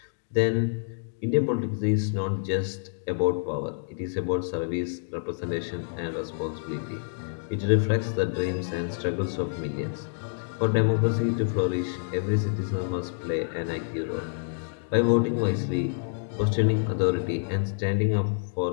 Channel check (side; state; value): right; silent; digital silence